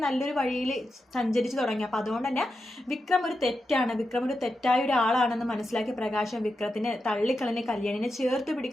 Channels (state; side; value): normal; both; correlation 0.88